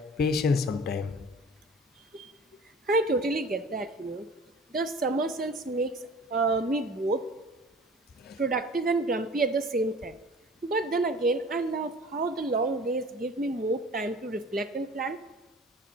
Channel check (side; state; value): both; normal; correlation 0.44